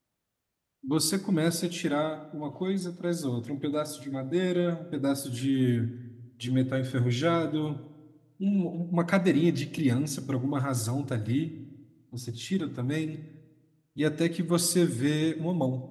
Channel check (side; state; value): both; identical; correlation 1.00